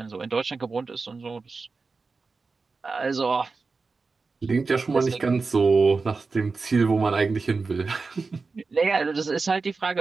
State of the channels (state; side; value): quieter; left; 4.2 dB